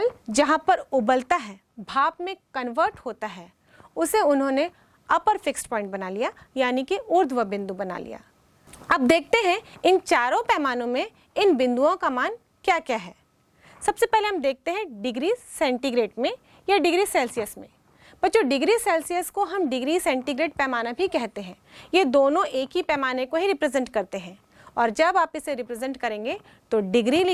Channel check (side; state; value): both; identical; correlation 1.00